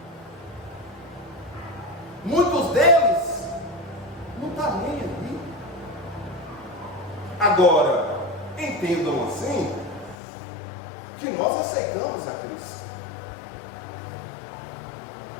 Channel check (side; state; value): right; drops out; at 10.2 s